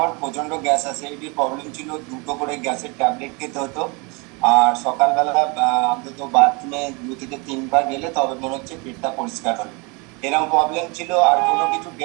প্রচন্ড গ্যাস অ্যাসিডিটির প্রবলেম ছিল, দুটো করে গ্যাসের ট্যাবলেট খেতে হতো। আর সকালবেলা অন্তত বাথরুমে 2 থেকে 3 বার গেলে তবে মনে হচ্ছে পেটটা পরিষ্কার হলো, এরকম প্রবলেম ছিল। আর কোনো কিছু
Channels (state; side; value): quieter; left; 29.6 dB